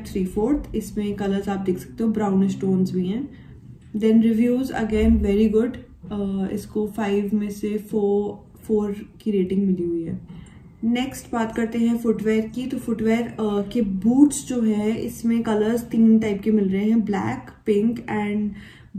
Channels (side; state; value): both; identical; correlation 1.00